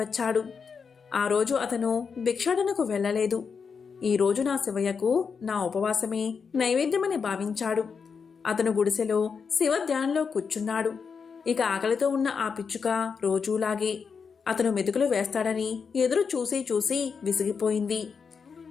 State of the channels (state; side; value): quieter; right; 5.8 dB